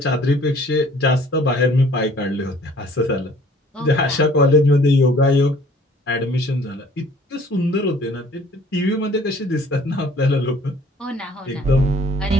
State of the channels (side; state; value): both; normal; correlation 0.55